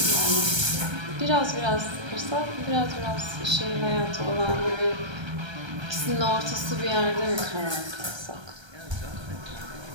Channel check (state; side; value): late; left; 1.3 ms